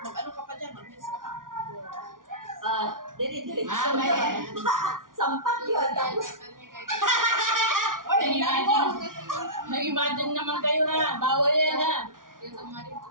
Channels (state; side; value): late; left; 0.89 ms